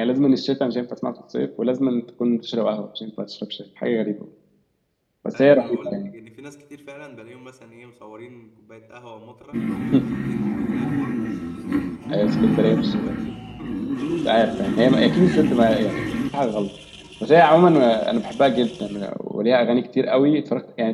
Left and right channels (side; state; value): both; identical; correlation 1.00